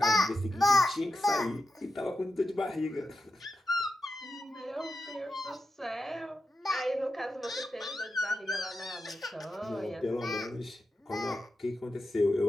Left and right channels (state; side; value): normal; both; correlation 0.88